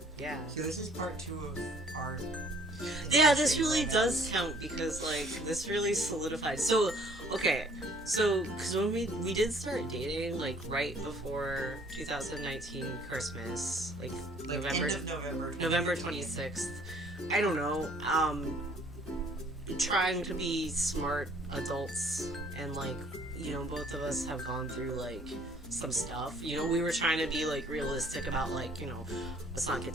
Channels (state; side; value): normal; both; correlation 0.57